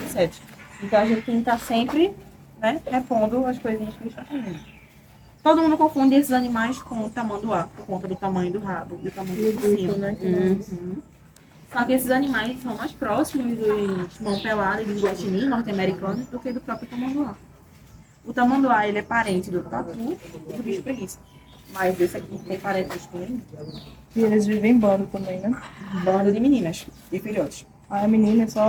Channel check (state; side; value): identical; both; correlation 1.00